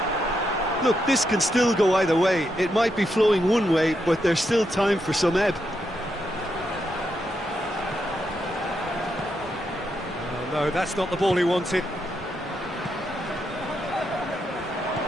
Look, this can still go either way. It might be flowing one way, but there's still time for some ebb. Oh, no, that's not the ball he wanted.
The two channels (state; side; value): normal; both; correlation 0.82